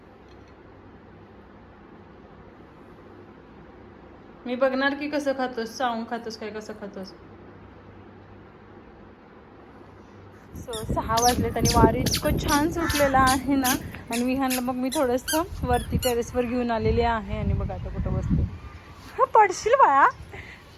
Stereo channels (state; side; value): identical; both; correlation 1.00